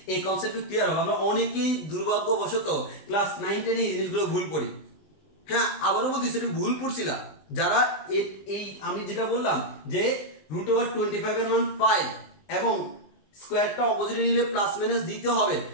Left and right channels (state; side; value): late; right; 20 ms